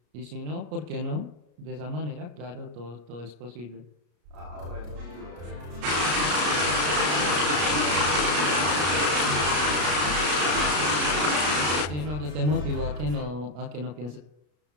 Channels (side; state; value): left; late; 33 ms